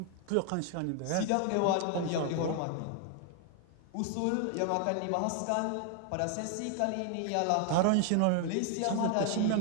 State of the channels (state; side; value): different; both; correlation 0.00